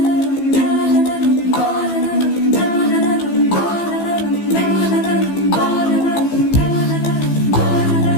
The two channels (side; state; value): right; late; 15 ms